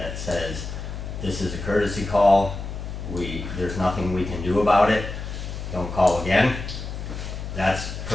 says, this is a courtesy call, there's nothing we can do about it, don't call again, that's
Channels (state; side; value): noise; left; hum, 7 dB below the sound